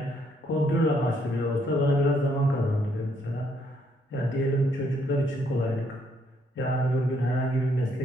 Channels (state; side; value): normal; both; correlation 0.71